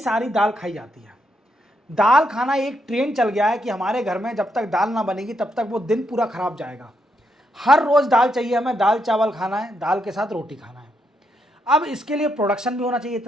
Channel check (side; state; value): both; normal; correlation 0.79